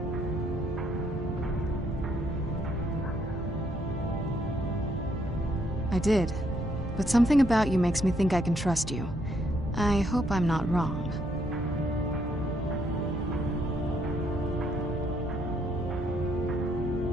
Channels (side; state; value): both; normal; correlation 0.72